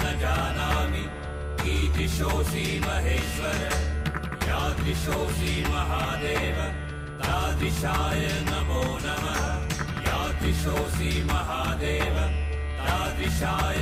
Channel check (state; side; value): identical; both; correlation 1.00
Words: न जानामि कीदृशोऽसि महेश्वर यादृशोऽसि महादेव तादृशाय नमो नमः यादृशोऽसि महादेव तादृशाय